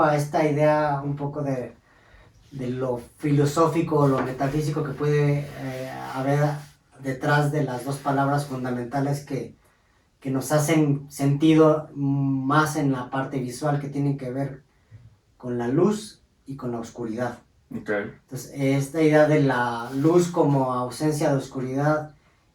a esta idea un poco de lo filosófico o lo metafísico que puede haber detrás de las dos palabras fundamentales que nos hacen sentido más en la parte visual, que tienen que ver con la luz y con la oscuridad. Okay. Entonces, esta idea de la luz como ausencia de oscuridad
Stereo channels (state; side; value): identical; both; correlation 1.00